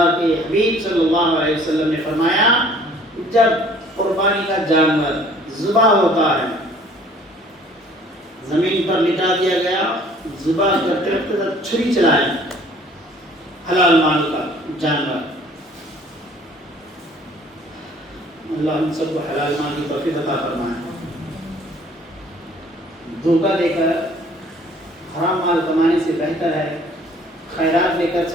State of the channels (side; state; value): both; normal; correlation 0.55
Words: کے حبیب صلی اللہ علیہ وسلم نے فرمایا جب قربانی کا جانور ذبح ہوتا ہے، زمین پر لٹا دیا گیا، ذبح کرتے وقت چھری چلائیں، حلال مال کا جانور، اللہ ہم سب کو حلال مال کی توفیق عطا فرمائے۔ دھوکہ دے کر حرام مال کمانے سے بہتر ہے خیرات لے کر،